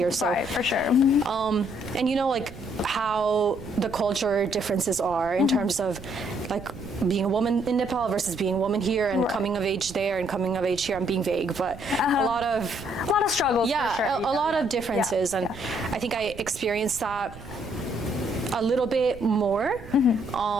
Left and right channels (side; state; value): right; noise; rumble, 16 dB below the sound